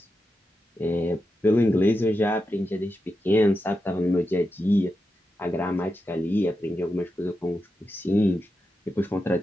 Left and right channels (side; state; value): both; normal; correlation 0.88